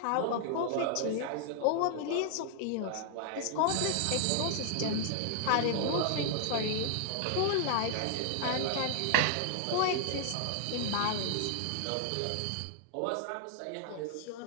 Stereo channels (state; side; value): different; both; correlation -0.01